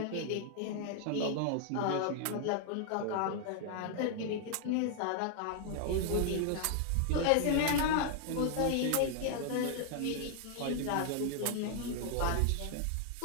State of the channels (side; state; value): both; different; correlation 0.00